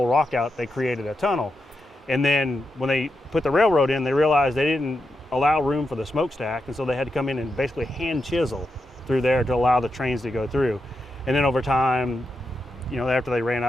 rock out, they created a tunnel. And then when they put the railroad in, they realized they didn't allow room for the smokestack. And so they had to come in and basically hand chisel through there to allow the trains to go through. And then over time, after they ran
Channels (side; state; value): both; normal; correlation 0.86